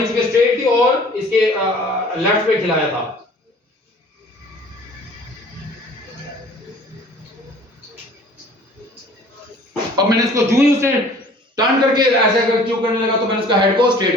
चूंकि स्ट्रेट थी और इसके लेफ्ट पे खिलाया था। अब मैंने इसको जो ही उसने टर्न करके ऐसे अगर क्यों करने लगा तो मैंने उसका हेड को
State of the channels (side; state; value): both; normal; correlation 0.50